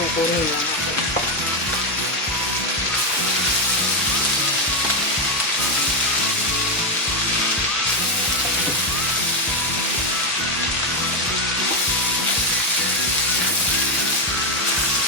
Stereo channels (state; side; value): normal; both; correlation 0.07